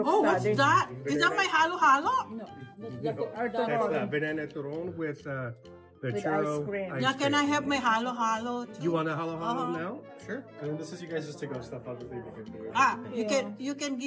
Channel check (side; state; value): both; identical; correlation 1.00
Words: Oh, what's study. that? Is that my halo-halo? No, That's banana turon with the With churro. ice cream. Yeah, can I have my halo-halo too? You want a halo now? Sure. And this is you guys just to go stuff. Obviously, we can do it. Ah, you can